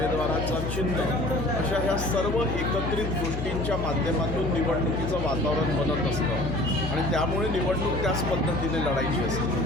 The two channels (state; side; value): noise; left; hum, 4 dB below the sound